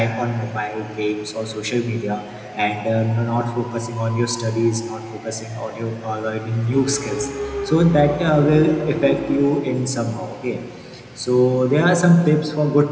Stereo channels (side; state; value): both; identical; correlation 1.00